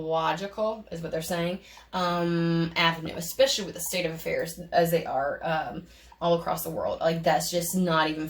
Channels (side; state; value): both; identical; correlation 1.00